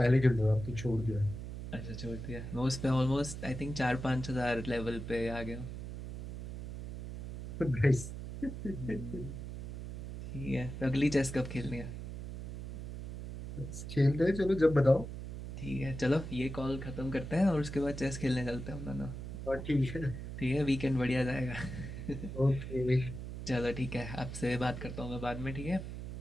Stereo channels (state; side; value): noise; right; hum, 8 dB below the sound